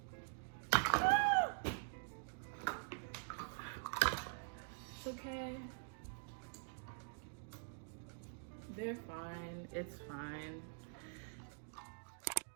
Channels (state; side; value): silent; left; digital silence